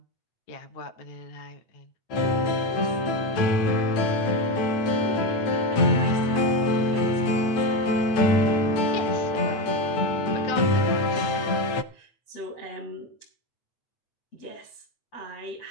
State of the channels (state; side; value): late; right; 8.9 ms